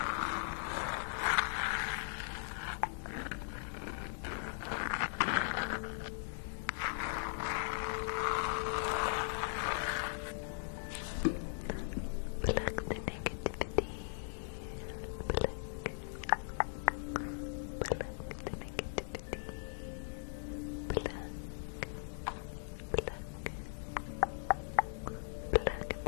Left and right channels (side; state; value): right; silent; digital silence